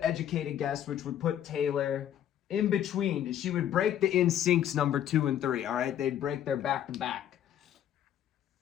educated guess, which would put Taylor in between. She would break the NSYNC's number 2 and 3, all right? They'd break their back-to-back.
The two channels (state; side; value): quieter; right; 10.5 dB